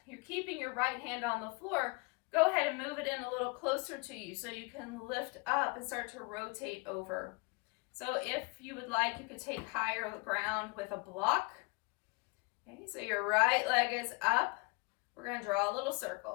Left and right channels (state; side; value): quieter; right; 29.6 dB